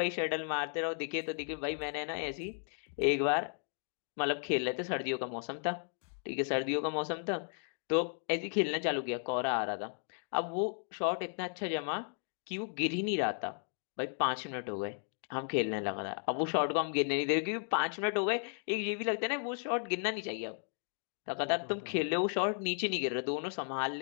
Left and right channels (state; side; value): silent; right; 55 dB below the other